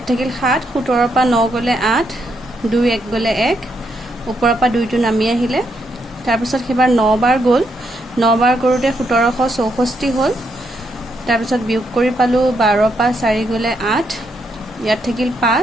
থাকিল 7 17 পৰা 9 গ'লে 8 2 1 গ'লে 1 ওপৰৰ পৰা 2টো নামি আহিলে তাৰপিছত সেইবাৰ 9 বাৰ গ'ল 9 বাৰ কৰোঁতে 1764 হ'ল তাৰপিছত বিয়োগ কৰি পালোঁ 12 পৰা 4 গ'লে 8 ইয়াত থাকিল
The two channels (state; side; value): normal; both; correlation 0.78